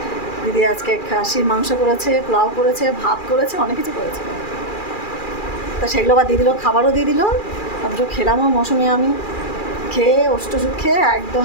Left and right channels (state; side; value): late; right; 2.4 ms